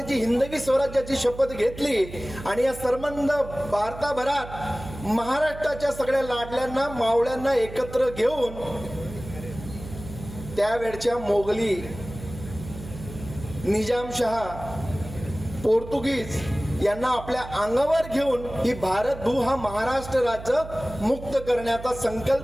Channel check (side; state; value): right; noise; hum, 13 dB below the sound